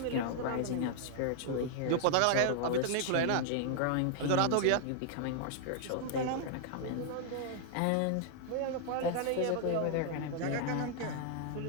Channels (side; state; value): both; different; correlation 0.00